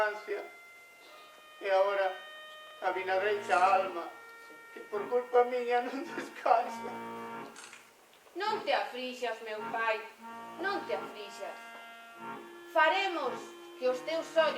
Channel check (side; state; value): both; identical; correlation 1.00